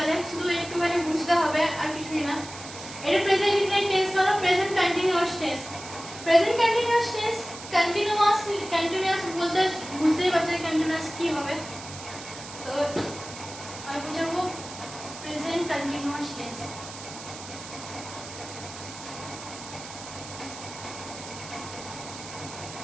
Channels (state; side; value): noise; right; hiss, 13 dB below the sound